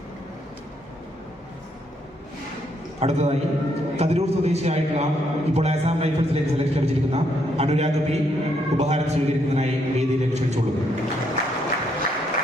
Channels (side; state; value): both; normal; correlation 0.74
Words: അടുത്തതായി കതിരൂർ സ്വദേശിയായിട്ടുള്ള ഇപ്പോൾ ആസാം റൈഫിൾസിലേക്ക് സെലക്ഷൻ ലഭിച്ചിരിക്കുന്ന അനുരാഗ് P ഉപഹാരം സ്വീകരിക്കുന്നതിനായി വേദിയിലേക്ക് ക്ഷണിച്ചുകൊള്ളുന്നു.